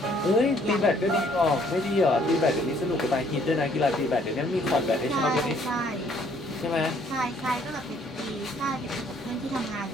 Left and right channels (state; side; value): normal; both; correlation 0.63